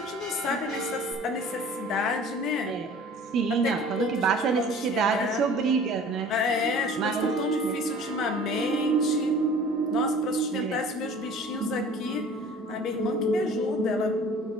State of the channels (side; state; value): both; normal; correlation 0.46